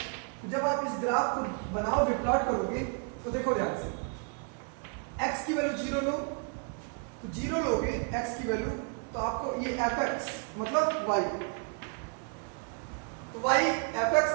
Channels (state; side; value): quieter; left; 39.8 dB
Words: जब आप इस ग्राफ को बनाओगे, प्लॉट करोगे, तो देखो ध्यान से, x की वैल्यू 0 लो, तो 0 लोगे x की वैल्यू, तो आपको ये fx मतलब y, तो y fx,